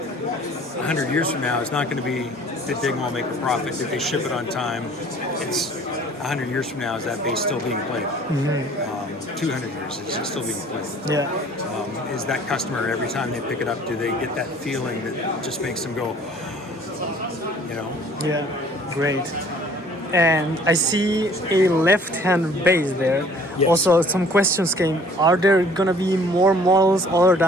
years from now is not going to be, did Dingwall make a profit? Did they ship it on time? It's 100 years from now, is that bass still being played? 200 years, is it still being played? Yeah. Is that customer, every time they pick it up, do they get that feeling that just makes them go, you know? Yeah, great. And I see a left-hand bass there. Yes. Also, some questions came. Are there going to be more models other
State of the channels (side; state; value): both; normal; correlation 0.53